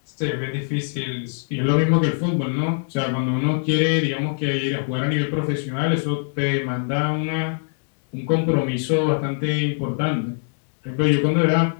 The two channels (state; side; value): silent; right; digital silence